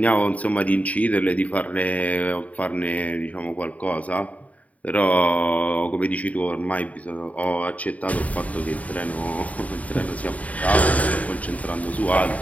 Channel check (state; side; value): late; right; 0.070 ms